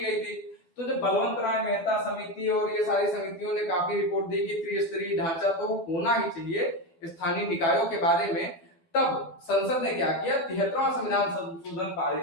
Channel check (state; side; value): late; right; 12 ms